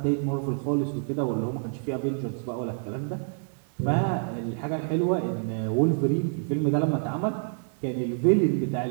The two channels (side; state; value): left; silent; 60 dB below the other